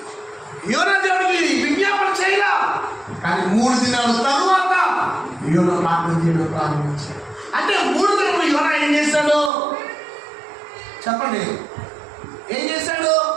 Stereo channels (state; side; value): drops out; left; at 9.5 s